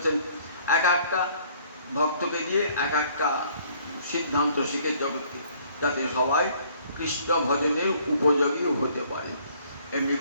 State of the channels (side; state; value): both; inverted; correlation -0.60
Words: এক একটা ভক্তকে দিয়ে এক একটা সিদ্ধান্ত শিখে জগৎকে, যাতে সবাই কৃষ্ণ ভজনের উপযোগী হতে পারে। এমনি